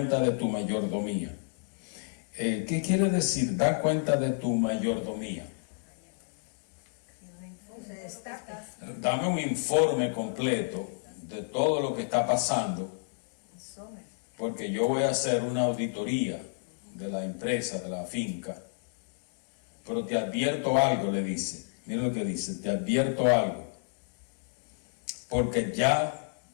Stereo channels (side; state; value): right; silent; digital silence